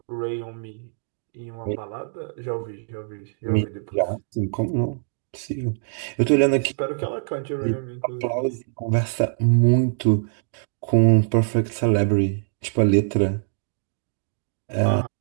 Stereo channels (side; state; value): left; silent; digital silence